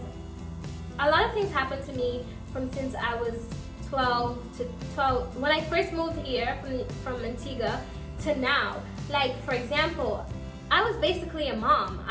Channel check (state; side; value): identical; both; correlation 1.00